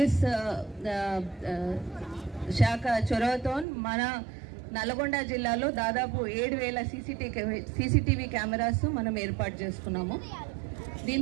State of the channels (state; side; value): drops out; left; at 3.7 s